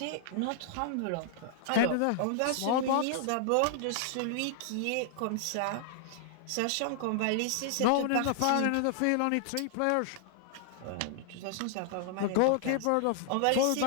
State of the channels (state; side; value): different; both; correlation 0.00